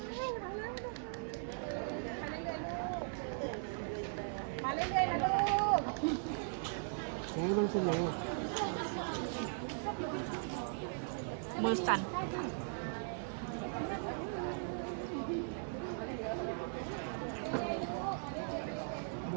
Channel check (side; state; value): left; silent; 52 dB below the other